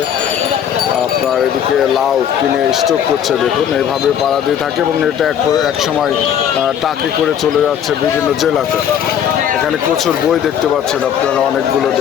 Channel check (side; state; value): right; quieter; 9.1 dB